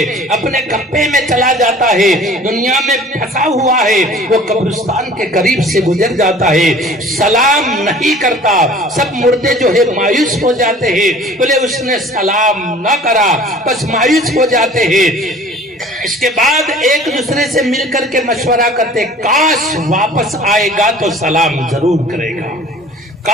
اپنے کپے میں چلا جاتا ہے، دنیا میں پھنسا ہوا ہے، وہ قبرستان کے قریب سے گزر جاتا ہے، سلام نہیں کرتا۔ سب مردے جو ہے مایوس ہو جاتے ہیں، بولے اس نے سلام نہ کرا، بس مایوس ہو جاتے ہیں۔ اس کے بعد ایک دوسرے سے مل کر کے مشورہ کرتے، کاش واپس آئے گا تو سلام ضرور کرے گا،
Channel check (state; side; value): normal; both; correlation 0.47